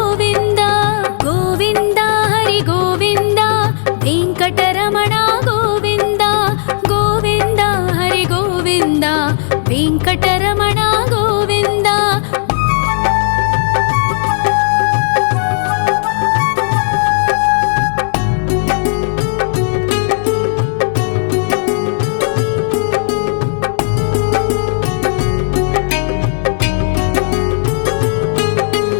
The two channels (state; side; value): silent; right; digital silence